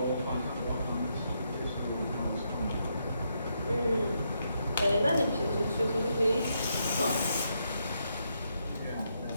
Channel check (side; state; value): both; inverted; correlation -0.79